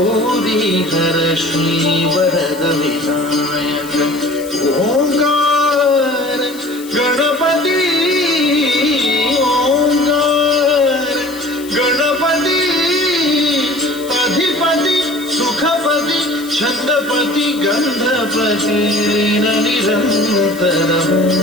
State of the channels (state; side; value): noise; left; hiss, 18 dB below the sound